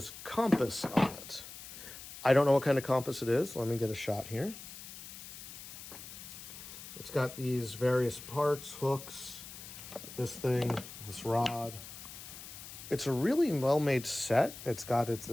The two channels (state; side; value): noise; left; hiss, 13 dB below the sound